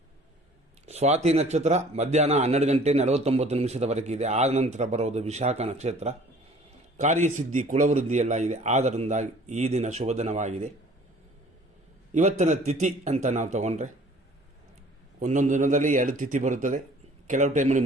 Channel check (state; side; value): normal; both; correlation 0.51